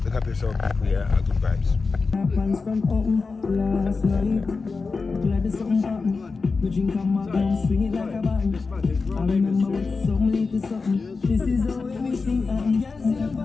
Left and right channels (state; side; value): quieter; right; 4.4 dB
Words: Look up yourself, people, yeah, good vibes. Happens from home last night. Glad there's something happened. We drink a magnum, swing it like a band. I remember with some little something. This is how everything happens. Yes, you're